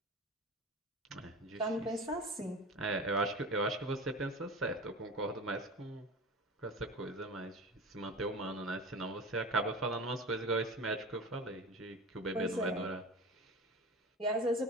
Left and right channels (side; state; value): both; normal; correlation 0.33